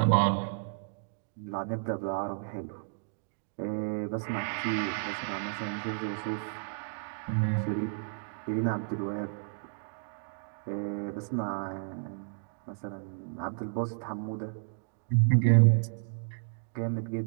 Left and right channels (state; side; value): silent; left; digital silence